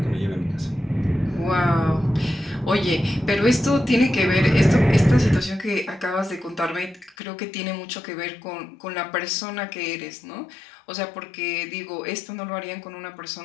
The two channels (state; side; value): drops out; right; at 7.2 s